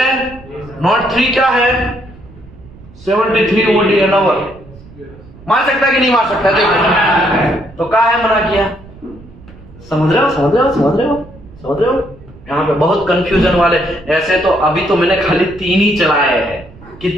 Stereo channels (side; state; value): right; noise; rumble, 21 dB below the sound